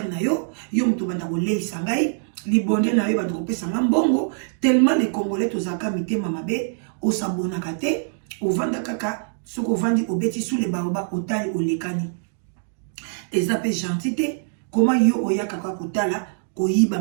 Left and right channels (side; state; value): left; silent; digital silence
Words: na yo muto banda ko leisa ngai libonde na yo banda ko pesa mbongo tellement les congolais tozaka mitema mabe o s'abonna kate o vanda kaka soko vandi obeti sous les baoba otali olekani ezape gentité comment yo oya kaka kotala koyiba